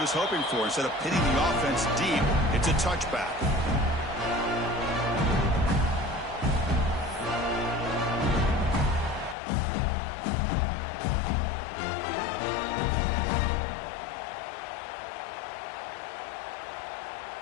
hoping for. Instead of pitting the offense deep, it's a touchback.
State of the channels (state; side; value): drops out; right; at 9.3 s